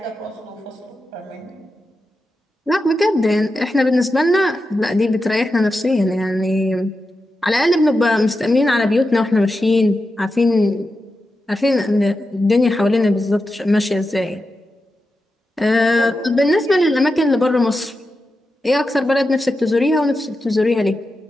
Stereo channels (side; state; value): both; normal; correlation 0.90